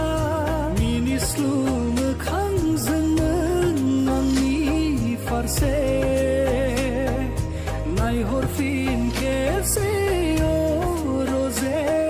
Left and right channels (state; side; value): identical; both; correlation 1.00